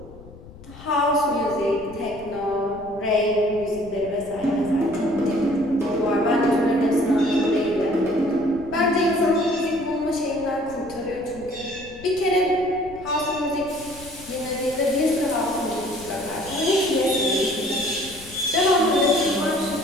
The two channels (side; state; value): left; noise; rumble, 19 dB below the sound